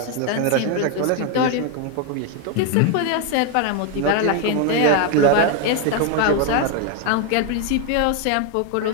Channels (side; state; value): both; different; correlation 0.01